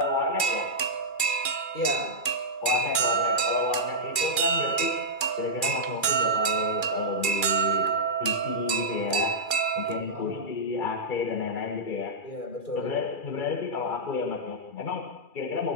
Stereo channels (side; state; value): right; late; 2.4 ms